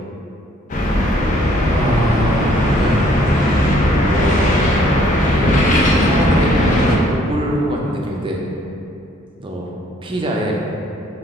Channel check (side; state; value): both; normal; correlation 0.63